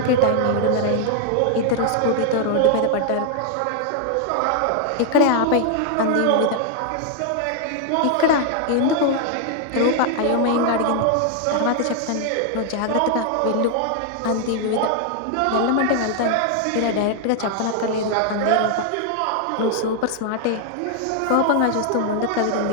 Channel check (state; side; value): different; both; correlation 0.00